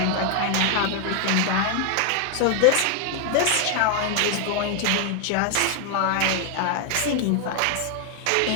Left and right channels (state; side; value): different; both; correlation 0.01